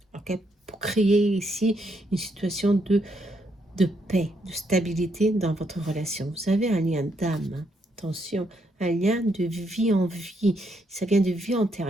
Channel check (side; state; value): both; normal; correlation 0.76